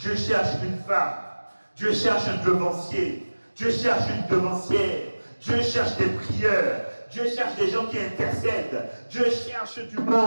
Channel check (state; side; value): inverted; both; correlation -1.00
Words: cherche une femme. Dieu cherche un devancier. Dieu cherche une devancière. Dieu cherche des prieurs. Dieu cherche des gens qui intercèdent. Dieu cherche du